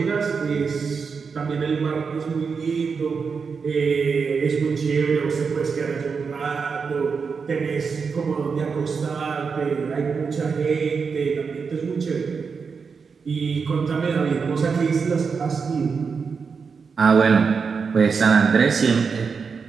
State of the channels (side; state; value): left; quieter; 5.5 dB